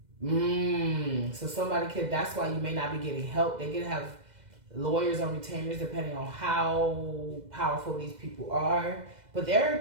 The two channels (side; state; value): left; late; 2.0 ms